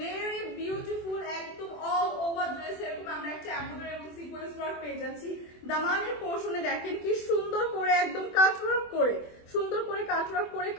বিউটিফুল একদম অল ওভার ড্রেস এরকম আমরা একটা এমব্রয়ডারি এবং সিকোয়েন্স ওয়ার্ক পেয়ে যাচ্ছি। দামানের পোর্শনে দেখেন কি সুন্দর করে একদম কাট ওয়ার্ক করে, সুন্দর করে কাট ওয়ার্ক করে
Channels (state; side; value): late; right; 24 ms